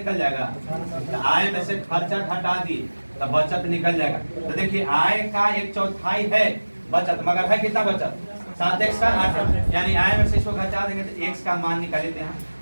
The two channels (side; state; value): both; inverted; correlation -1.00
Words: जाएगा। तो आय में से खर्चा घटा दिए तो बचत निकल जाएगा। तो देखिए आय का 1/4 है बचत, मगर है कितना बचत? 7x का 8, यानी आय में से इसको घटा देंगे तो x का मान निकाल लेते हैं।